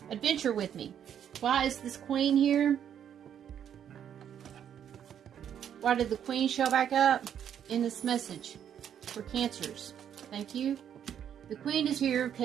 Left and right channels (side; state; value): left; quieter; 9.2 dB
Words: adventure with me? Why is this Queen here? Why did the Queen show back up in this message for Cancers? Thank you. The Queen is here